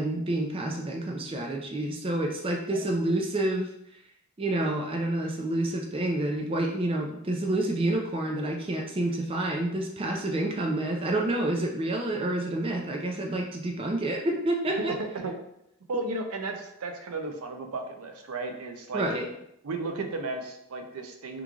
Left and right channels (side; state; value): both; normal; correlation 0.54